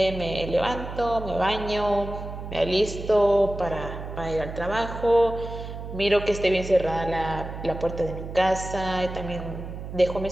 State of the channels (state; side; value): noise; right; hum, 9 dB below the sound